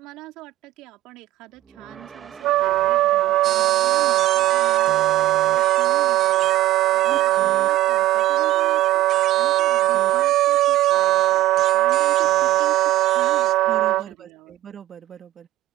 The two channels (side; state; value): left; quieter; 15.5 dB